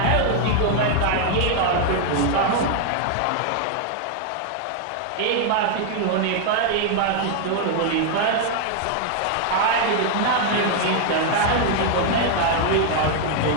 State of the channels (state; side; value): different; both; correlation 0.00